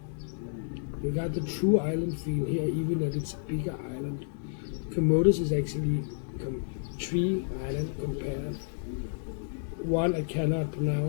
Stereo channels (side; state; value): right; silent; digital silence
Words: You got the true island feel here, even that it's a bigger island. Camotes is actually three islands compared. One I cannot